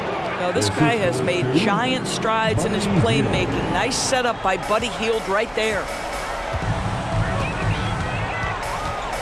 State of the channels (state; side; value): identical; both; correlation 1.00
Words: Now, this guy has made giant strides in his playmaking. Nice setup by Buddy Hield right there.